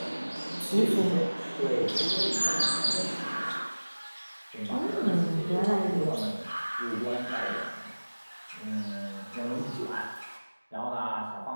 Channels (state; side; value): inverted; both; correlation -1.00